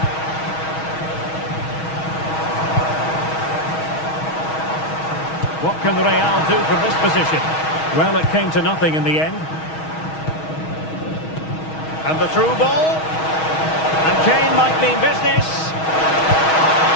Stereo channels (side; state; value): right; late; 6.3 ms